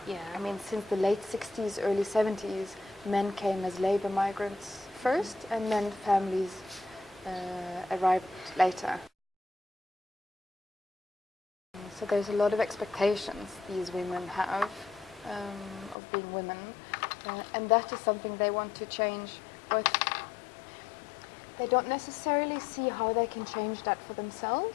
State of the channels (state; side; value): drops out; right; at 16.0 s